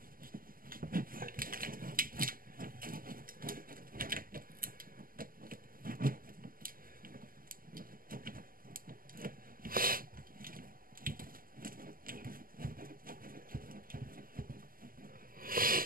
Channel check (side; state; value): left; late; 0.42 ms